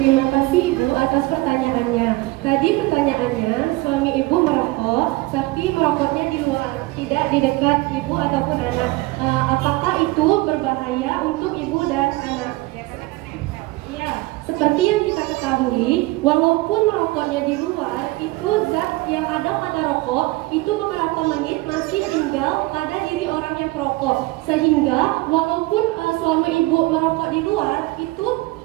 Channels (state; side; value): quieter; left; 21.2 dB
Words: kasih Ibu atas pertanyaannya. Tadi pertanyaannya, suami Ibu merokok, tapi merokoknya di luar, tidak di dekat Ibu ataupun anak. Apakah itu berbahaya untuk Ibu dan anak? Ya, seperti yang kita ketahui, walaupun merokoknya di luar, itu zat yang ada pada rokok itu beberapa menit masih tinggal pada diri orang yang perokok. Sehingga walaupun suami Ibu merokok di luar, itu